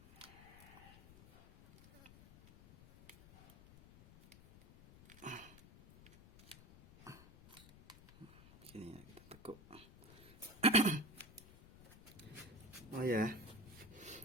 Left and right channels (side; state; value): left; noise; rumble, 20 dB below the sound